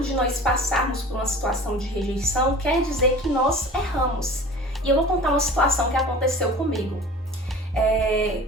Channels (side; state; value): both; normal; correlation 0.42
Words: de nós passarmos por uma situação de rejeição quer dizer que nós erramos. E eu vou contar uma situação que aconteceu comigo.